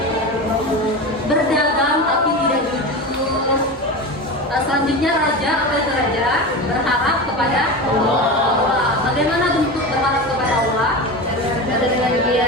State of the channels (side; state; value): both; normal; correlation 0.25